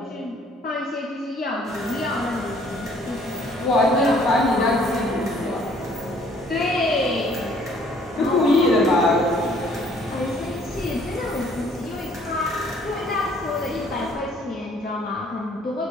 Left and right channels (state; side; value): normal; both; correlation 0.59